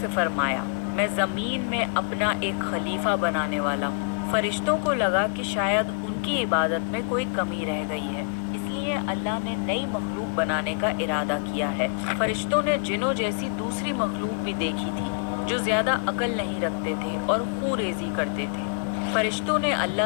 फरमाया, मैं ज़मीन में अपना एक खलीफा बनाने वाला हूँ। फरिश्तों को लगा कि शायद उनकी इबादत में कोई कमी रह गई है, इसलिए अल्लाह ने नई मखलूक बनाने का इरादा किया है। फरिश्तों ने जिन्नों जैसी दूसरी मखलूक भी देखी थी जो ज़्यादा अकल नहीं रखते थे और खून रेजी करते थे। फरिश्तों ने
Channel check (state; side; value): silent; right; digital silence